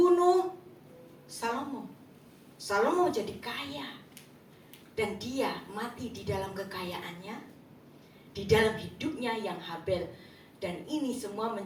Salomo. Salomo jadi kaya. Dan dia mati di dalam kekayaannya, di dalam hidupnya yang Habel. Dan ini semua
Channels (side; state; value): both; identical; correlation 1.00